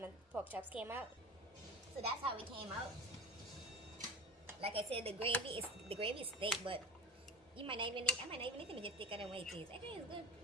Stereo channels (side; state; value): both; normal; correlation 0.30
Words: pork chops came out. So that's how it came out. Like I said, the gravy is thick, but I might not even need to make it thicker than what it is. I think it's good.